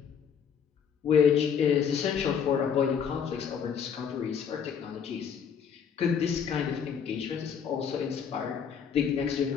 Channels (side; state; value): right; quieter; 7.3 dB